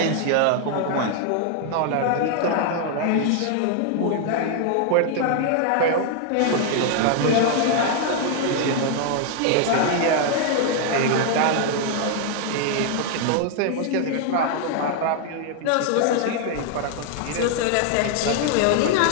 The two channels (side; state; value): both; different; correlation 0.00